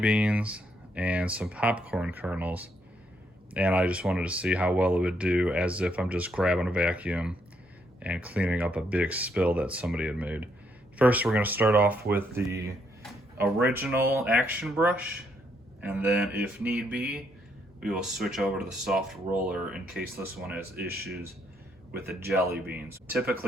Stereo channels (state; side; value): normal; both; correlation 0.74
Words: and some popcorn kernels. And I just wanted to see how well it would do as if I'm just grabbing a vacuum and cleaning up a big spill that somebody had made. First, we're going to start off with the original action brush, and then if need be we will switch over to the soft roller in case this one has issues with the jelly beans.